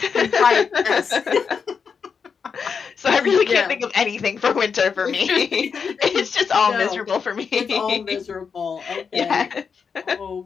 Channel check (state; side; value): quieter; right; 6.0 dB